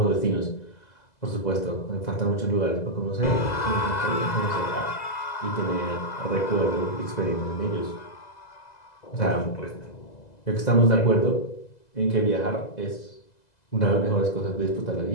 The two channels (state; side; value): late; right; 2.0 ms